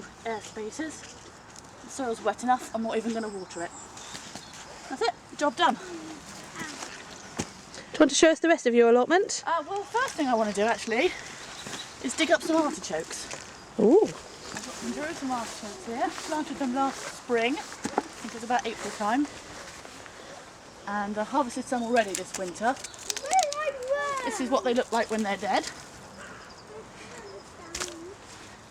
air spaces. The soil's wet enough, I'm not even going to water it. That's it, job done. Do you want to show us the rest of your allotment? Well, first thing I want to do actually is dig up some artichokes. Ooh. I've got some Jerusalem artichokes here. Planted them last spring, I think it was about April time. And I harvested some already this winter. This is what they look like when they're dead.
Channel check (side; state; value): both; identical; correlation 1.00